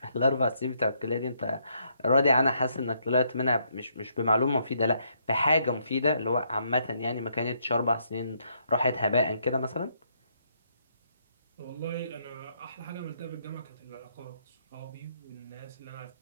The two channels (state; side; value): inverted; both; correlation -0.73